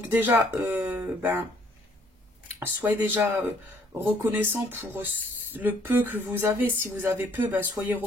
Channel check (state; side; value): normal; both; correlation 0.63